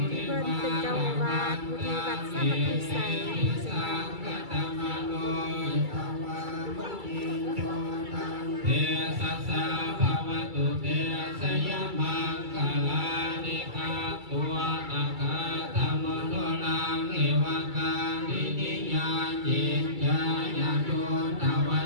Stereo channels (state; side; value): late; left; 2.3 ms